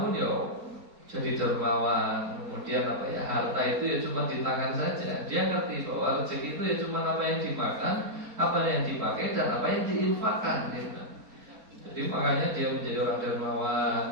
ya jadi dermawan. Kemudian apa ya, harta itu ya cuma di tangan saja. Dia ngerti bahwa rezeki itu ya cuma apa yang dimakan, apa yang dipakai dan apa yang diinfakkan gitu. Jadi makanya dia menjadi orang dermawan,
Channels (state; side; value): late; left; 4.3 ms